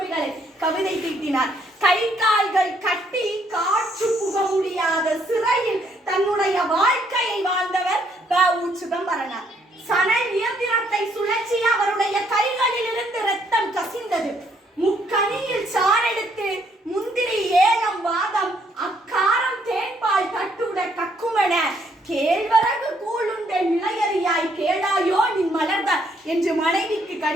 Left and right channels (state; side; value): normal; both; correlation 0.70